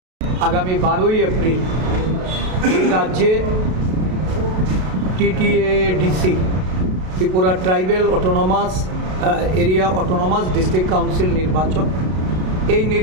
আগামী 12ই এপ্রিল রাজ্যে TTADC Tripura tribal autonomous area autonomous district council নির্বাচন, এই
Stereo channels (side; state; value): left; late; 32 ms